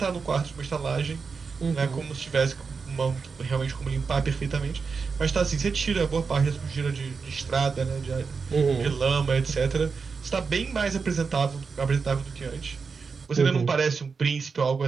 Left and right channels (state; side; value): quieter; left; 5.1 dB